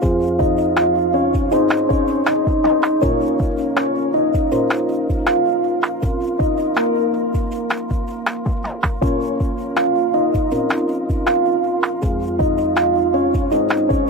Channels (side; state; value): both; normal; correlation 0.39